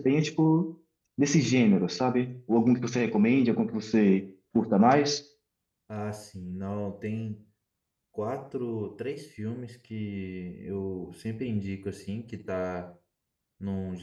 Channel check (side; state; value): both; identical; correlation 1.00